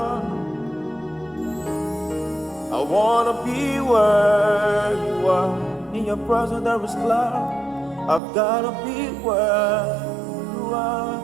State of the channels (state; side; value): drops out; left; at 8.2 s